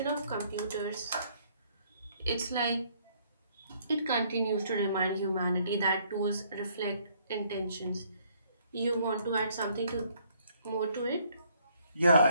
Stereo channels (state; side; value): inverted; both; correlation -0.65